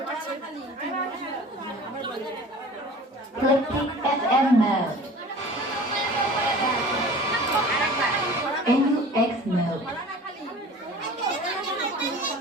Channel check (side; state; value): both; normal; correlation 0.42